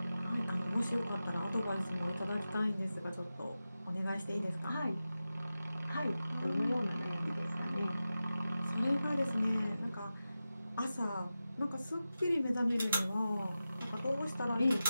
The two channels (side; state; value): both; inverted; correlation -0.93